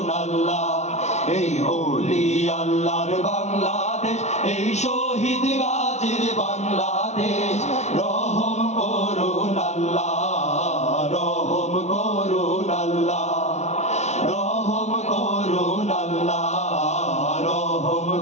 আল্লাহ। এই ওলি আল্লাহর বাংলাদেশ, এই শহীদ গাজীর বাংলাদেশ। রহম করুন আল্লাহ, রহম করুন আল্লাহ, রহম করুন আল্লাহ, রহম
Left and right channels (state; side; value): late; right; 0.32 ms